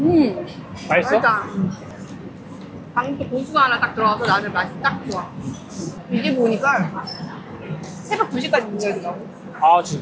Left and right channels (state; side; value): identical; both; correlation 1.00